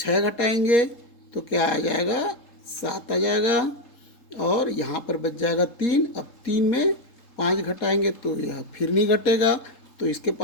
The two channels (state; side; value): late; right; 3.7 ms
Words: घटाएंगे तो क्या आ जाएगा, 7 आ जाएगा। और यहाँ पर बच जाएगा 3। अब 3 में 5 घटाएंगे तो यह फिर नहीं घटेगा, तो इसके